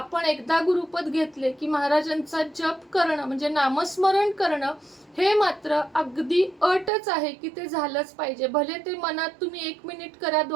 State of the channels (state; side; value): drops out; left; at 6.9 s